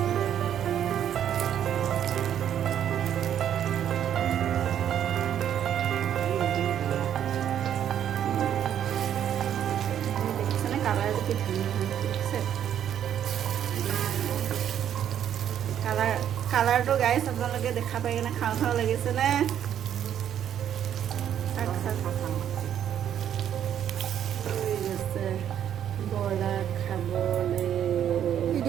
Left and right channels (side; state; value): left; quieter; 9.9 dB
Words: কালাৰটো গাইছ আপোনালোকে দেখা পাই কিনে খাওঁ খাওঁ লাগিছেনে?